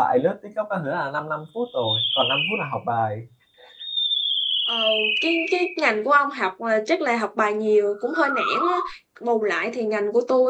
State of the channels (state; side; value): identical; both; correlation 1.00